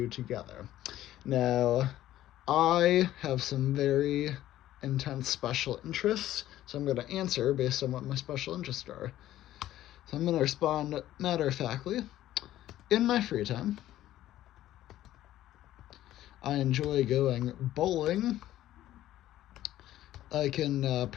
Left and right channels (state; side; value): quieter; right; 13.7 dB